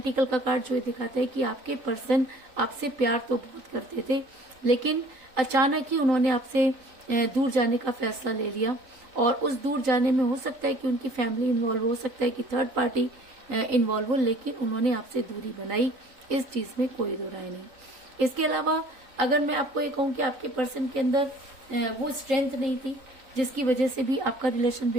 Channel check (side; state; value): left; late; 3.9 ms